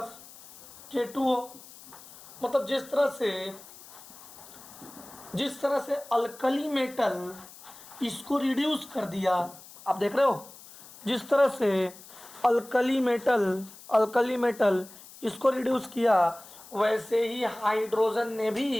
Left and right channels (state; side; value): noise; left; hiss, 19 dB below the sound